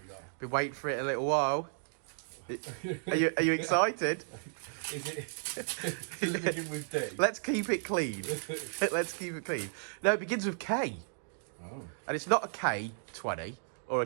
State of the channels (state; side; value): silent; left; digital silence